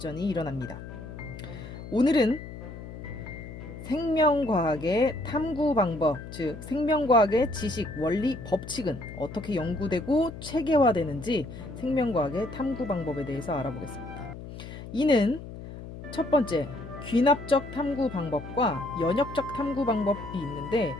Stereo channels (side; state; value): left; noise; hum, 12 dB below the sound